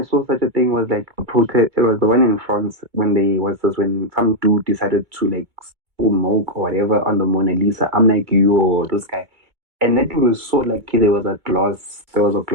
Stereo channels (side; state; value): left; late; 2.2 ms